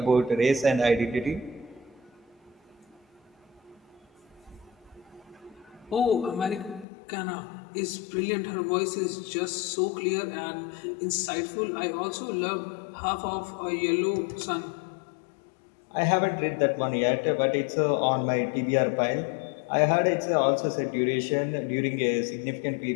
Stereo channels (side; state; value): right; drops out; at 6.9 s